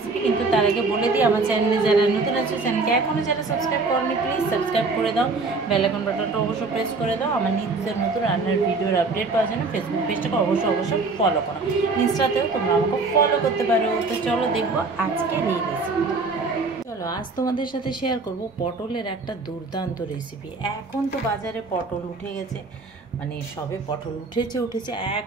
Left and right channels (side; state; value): left; quieter; 3.8 dB